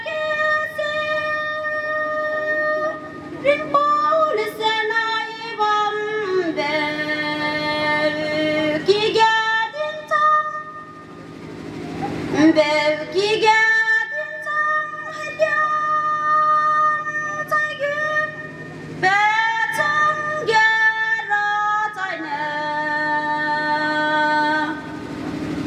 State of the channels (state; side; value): identical; both; correlation 1.00